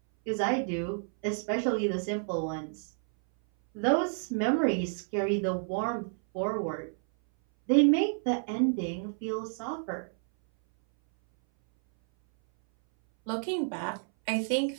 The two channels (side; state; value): left; silent; 58 dB below the other